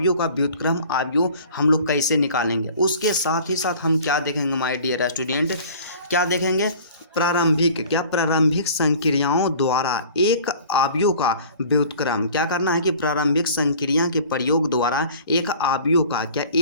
का व्युत्क्रम अवयव हम लोग कैसे निकालेंगे। उसके साथ ही साथ हम क्या देखेंगे माय डियर स्टूडेंट, क्या देखेंगे, प्रारंभिक संक्रियाओं द्वारा एक अवयव का व्युत्क्रम। क्या करना है कि प्रारंभिक संक्रिया के प्रयोग द्वारा एक अवयव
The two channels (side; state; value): both; inverted; correlation -0.47